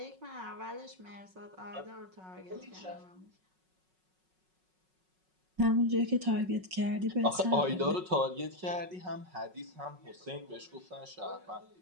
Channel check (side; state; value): left; late; 5.4 ms